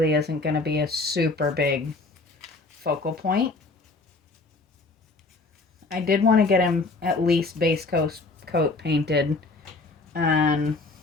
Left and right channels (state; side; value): quieter; right; 3.6 dB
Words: isn't going to be a super big focal point. I did want to get him at least base coat painted and